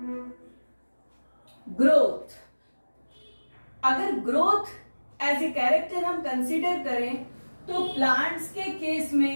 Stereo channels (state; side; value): inverted; both; correlation -1.00